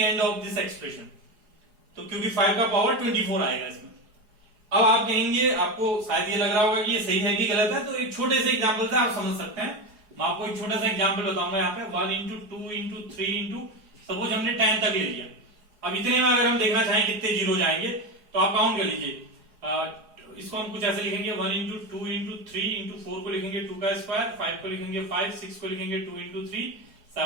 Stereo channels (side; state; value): left; late; 4.8 ms